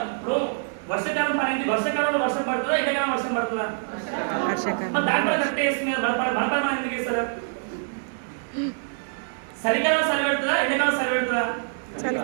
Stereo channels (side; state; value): left; silent; 62 dB below the other